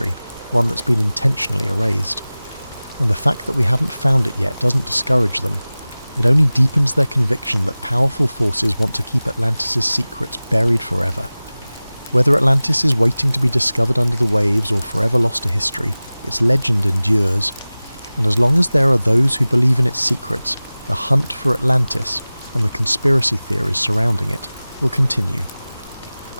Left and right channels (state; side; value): inverted; both; correlation -0.98